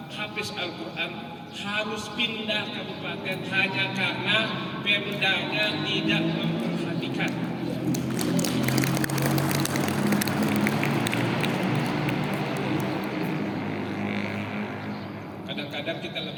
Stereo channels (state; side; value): identical; both; correlation 1.00